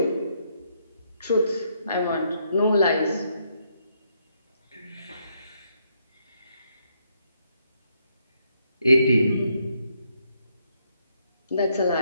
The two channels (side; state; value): both; inverted; correlation -0.75